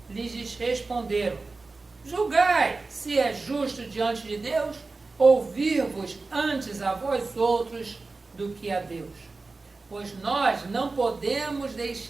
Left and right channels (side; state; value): left; quieter; 3.7 dB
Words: lhes responderam: julgai se é justo diante de Deus ouvir-vos antes a vós outros do que a Deus. Pois nós não podemos